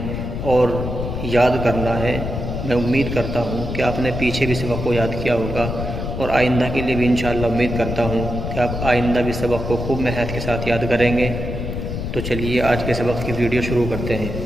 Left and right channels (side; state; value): left; noise; rumble, 4 dB below the sound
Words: اور یاد کرنا ہے۔ میں امید کرتا ہوں کہ آپ نے پیچھے بھی سبق کو یاد کیا ہوگا، اور آئندہ کے لیے بھی انشاءاللہ امید کرتا ہوں کہ آپ آئندہ بھی سبق کو خوب محنت کے ساتھ یاد کریں گے۔ تو چلیے آج کے سبق کی ویڈیو شروع کرتے ہیں۔